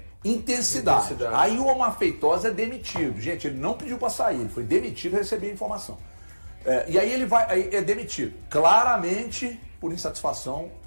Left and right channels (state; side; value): inverted; both; correlation -1.00